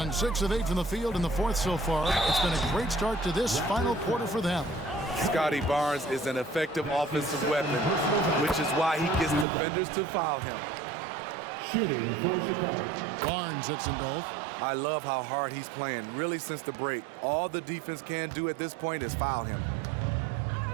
6 of 8 from the field in the fourth so far. It's been a great start to this final quarter for them. Scotty Barnes is an effective offensive weapon, which is why he gets defenders to foul him. Shooting for Chicago. Barnes hits them both. I love how hard he's playing, really since the break. All the defense can do at this point is foul him.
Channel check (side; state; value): left; drops out; at 9.5 s